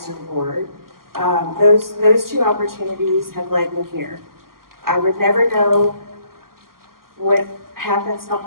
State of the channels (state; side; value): late; left; 0.92 ms